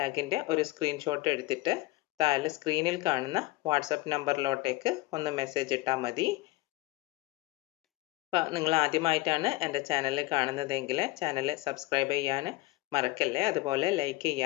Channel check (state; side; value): quieter; right; 20.1 dB